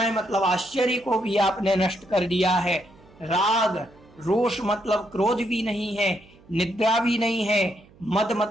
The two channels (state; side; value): noise; right; hum, 27 dB below the sound